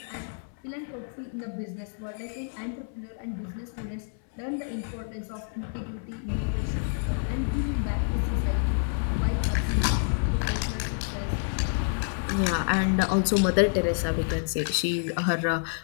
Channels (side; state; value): right; silent; 59 dB below the other